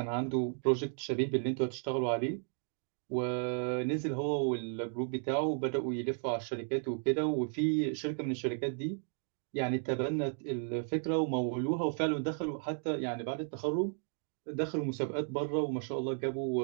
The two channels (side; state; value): left; silent; 55 dB below the other